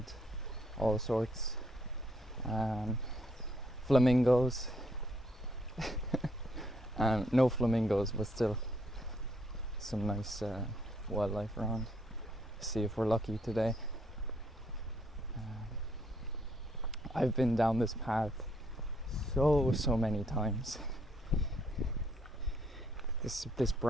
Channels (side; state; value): both; normal; correlation 0.71